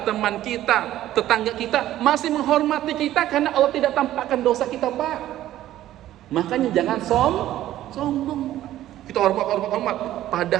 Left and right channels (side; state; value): left; quieter; 13.5 dB